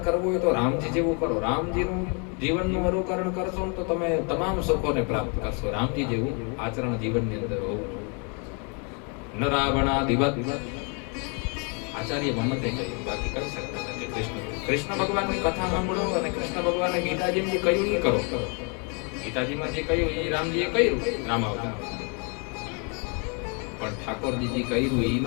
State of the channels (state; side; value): quieter; right; 36.0 dB